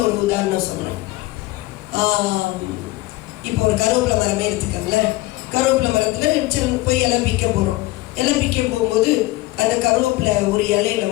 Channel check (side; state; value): right; quieter; 19.3 dB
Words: ஒரு உதாரணம் சொல்றேன். இப்போ ஒரு கருவேப்பிலை மரமே எடுத்துக்கோங்கள. கருவேப்பிலை மரத்துல போய் இலை பிக்க போறோம். இலை பிக்க போகும்போது அந்த கருவேப்பிலை ஒரு இலையில